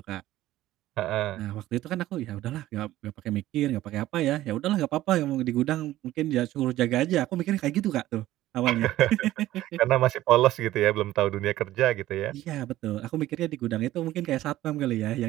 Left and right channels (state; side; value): quieter; left; 14.9 dB